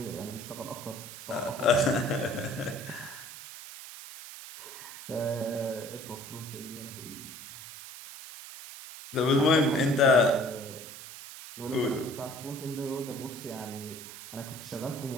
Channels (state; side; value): noise; right; hiss, 13 dB below the sound